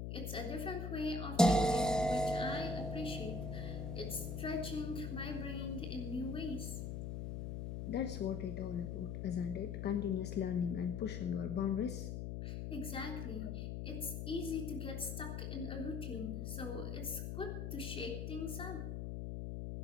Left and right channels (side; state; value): left; noise; hum, 4 dB below the sound